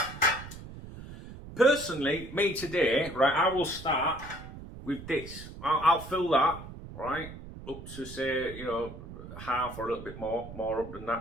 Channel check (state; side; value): noise; right; rumble, 13 dB below the sound